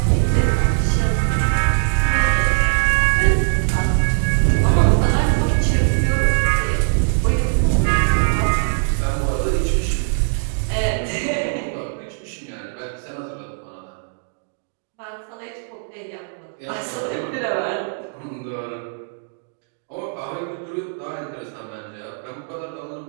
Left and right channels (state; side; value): silent; left; digital silence